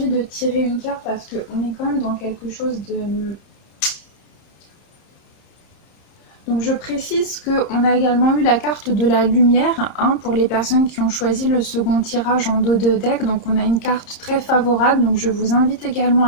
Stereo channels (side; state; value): right; late; 30 ms